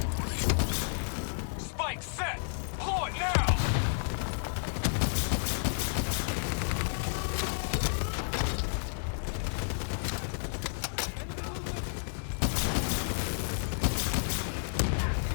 Spike set! Blow it now!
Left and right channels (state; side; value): silent; right; 57 dB below the other